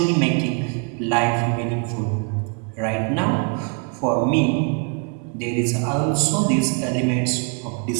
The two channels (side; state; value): left; quieter; 36.7 dB